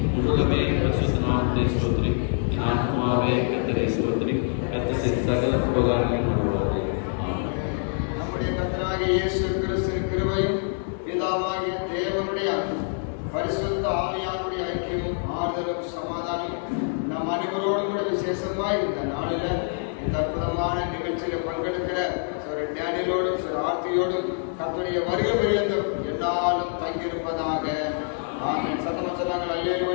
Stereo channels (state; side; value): silent; right; 61 dB below the other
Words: முழுவதுமே பரிசுத்த நாமத்தை ஸ்தோத்திரி. என் ஆத்மாவே கர்த்தரை ஸ்தோத்திரி, கர்த்தரின் சகல உபகாரங்களையும் மறவாதே. நம்முடைய கர்த்தராகிய இயேசு கிறிஸ்துவின் கிருபையும் பிதாவாகிய தேவனுடைய பரிசுத்த ஆவியானுடைய ஐக்கியமும் ஆறுதலும் சமாதானமும் நம் அனைவரோடும் கூட விசேஷமாய் இந்த நாளில் இந்த அற்புதமான நிகழ்ச்சியில் பங்கெடுக்கிற டேனியலோடும் ஆர்த்தியோடும் கர்த்தருடைய வருகை பரியந்தம் எல்லாரும் தங்கியிருப்பதாக. ஆமென். சத்தமா சொன்னாங்க